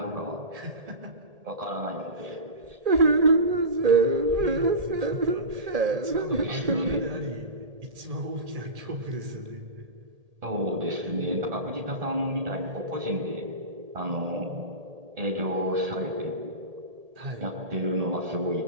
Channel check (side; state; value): left; late; 1.8 ms